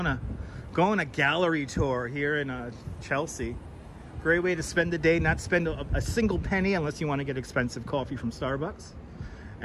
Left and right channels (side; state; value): both; identical; correlation 1.00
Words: a gallery tour here in Chelsea. Great way to spend the day, not spend a single penny unless you want to get expensive coffee from Starbucks.